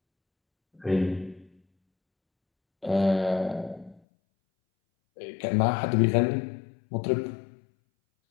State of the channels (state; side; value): drops out; right; at 4.0 s